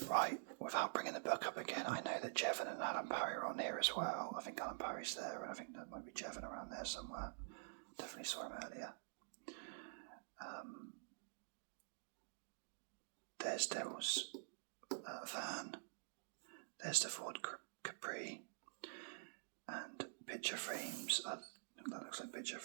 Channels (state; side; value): silent; left; digital silence